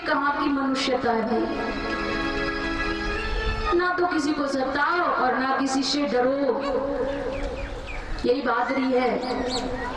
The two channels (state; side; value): identical; both; correlation 1.00